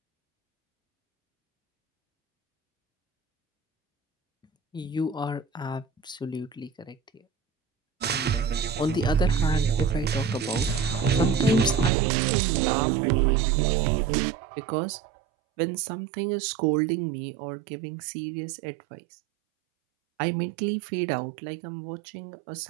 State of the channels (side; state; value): left; drops out; at 11.9 s